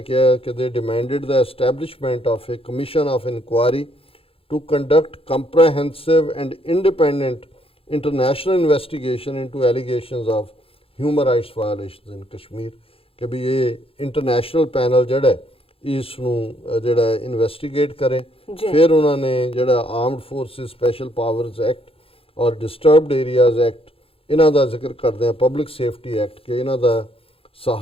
ਕਿਹਾ ਕਿ ਦੇ ਡਿਮਾਂਡਡ ਦਾ establishment of a commission of inquiry to conduct comprehensive and independent international investigation into allegations of human rights violations in Kashmir ਕਿ ਵੀ ਇਹ ਇੰਟਰਨੈਸ਼ਨਲ ਪੈਨਲ ਜਿਹੜਾ ਹੈ, ਇਸ ਨੂੰ ਜਿਹੜਾ ਇਨਵੈਸਟੀਗੇਟ ਕਰੇ। ਫਿਰ ਉਹਨਾਂ ਨੇ ਜਿਹੜਾ armed forces special powers act ਔਰ ਡਿਸਟਰਬਡ ਏਰੀਆਜ਼ ਐਕਟ ਇਹਨਾਂ ਦਾ ਜ਼ਿਕਰ ਕਰਦੇ ਆ, ਪਬਲਿਕ ਸੇਫਟੀ ਐਕਟ ਕਿ ਇਹਨਾਂ ਦਾ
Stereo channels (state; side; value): late; right; 0.27 ms